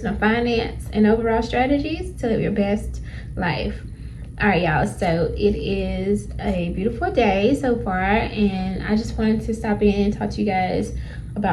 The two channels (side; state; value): both; identical; correlation 1.00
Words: finance, and overall strategies to live your best life. All right, y'all, so it is a beautiful day so far, and I just wanted to stop in and talk to you guys